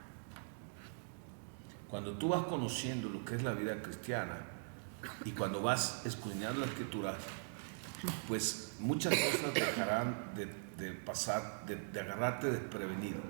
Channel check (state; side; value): silent; left; digital silence